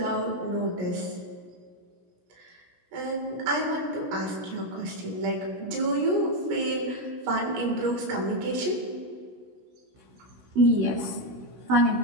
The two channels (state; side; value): late; left; 17 ms